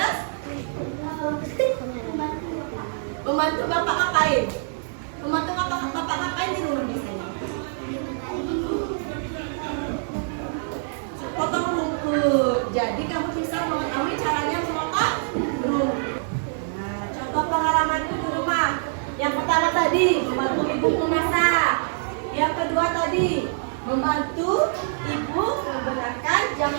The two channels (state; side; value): silent; left; digital silence